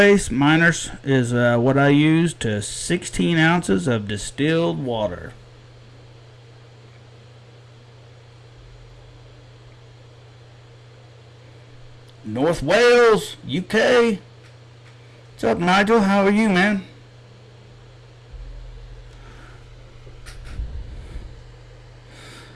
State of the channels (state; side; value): identical; both; correlation 1.00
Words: Miners is what I use to 16 ounces of distilled water. North Wales, UK. What's up, Nigel? How are you, man?